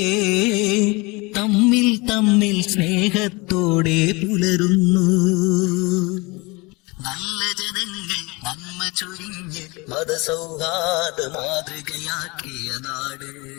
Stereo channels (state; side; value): quieter; right; 26.0 dB